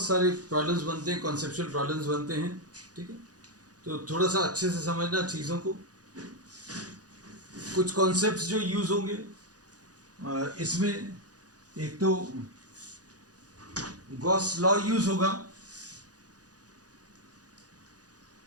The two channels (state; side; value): late; left; 0.68 ms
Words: सारे प्रॉब्लम्स बनते हैं, कॉन्सेप्चुअल प्रॉब्लम्स बनते हैं। ठीक है, तो थोड़ा सा अच्छे से समझना चीज़ों को। कुछ कॉन्सेप्ट्स जो यूज होंगे इसमें, एक तो गॉस लॉ यूज होगा,